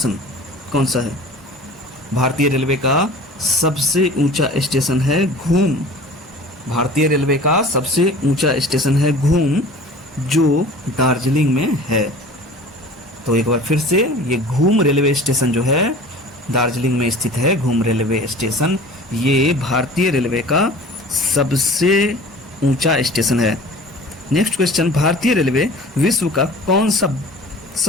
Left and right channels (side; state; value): both; normal; correlation 0.42